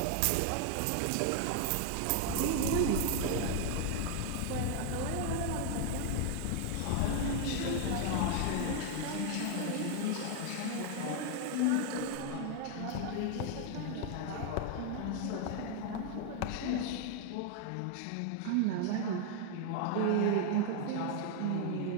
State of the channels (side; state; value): both; different; correlation 0.00